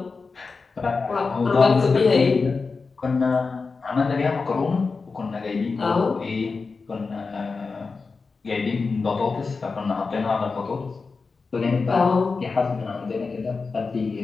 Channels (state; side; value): quieter; right; 4.4 dB